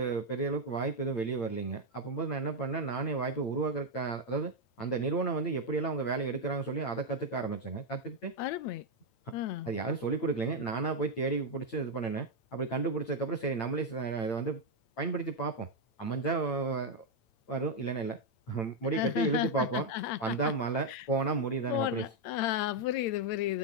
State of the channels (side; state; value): right; late; 8.9 ms